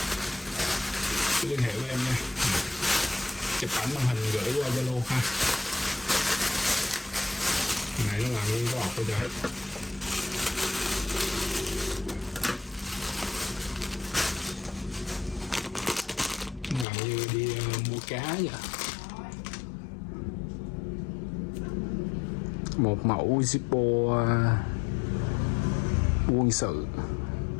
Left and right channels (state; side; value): drops out; right; at 16.9 s